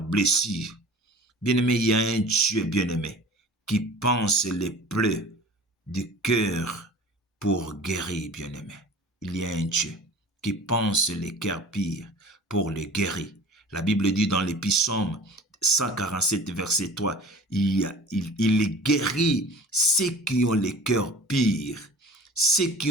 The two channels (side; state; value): both; normal; correlation 0.41